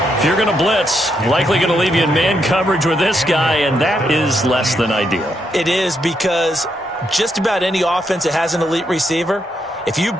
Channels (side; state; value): both; normal; correlation 0.79